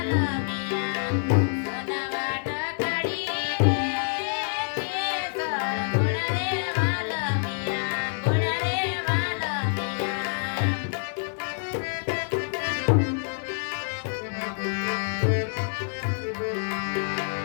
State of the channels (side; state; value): right; silent; digital silence